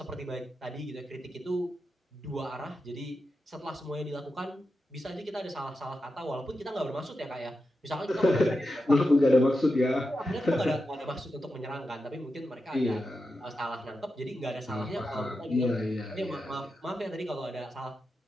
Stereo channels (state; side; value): normal; both; correlation 0.89